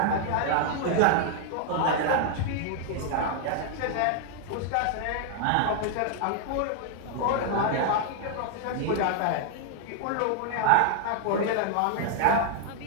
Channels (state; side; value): different; both; correlation 0.00